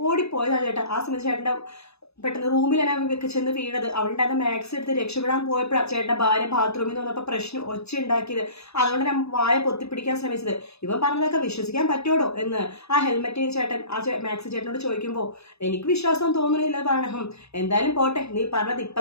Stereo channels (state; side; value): late; right; 0.79 ms